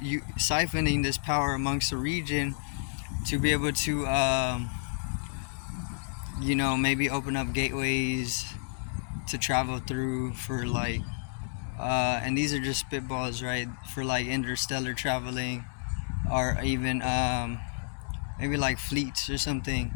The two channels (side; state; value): right; silent; digital silence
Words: this power amongst the region to be able to maybe open up gateways to travel through for and these are just spitballs, right, for interstellar traveling, or even maybe fleets or something.